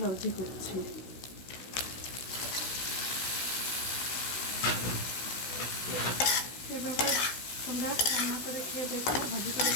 ভাজি করছি। এভাবে তোমরা রান্না করে খেয়ে দেখো, ভাজি করে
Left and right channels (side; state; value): right; late; 16 ms